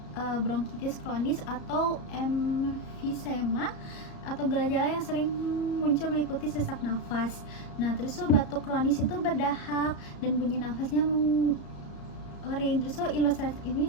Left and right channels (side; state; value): right; late; 34 ms